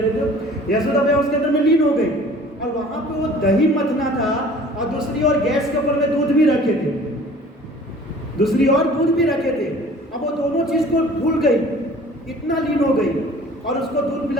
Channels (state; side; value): normal; both; correlation 0.48